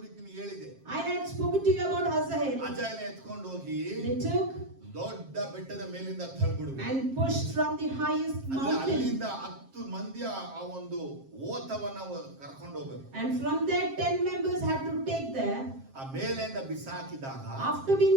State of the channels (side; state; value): left; late; 7.5 ms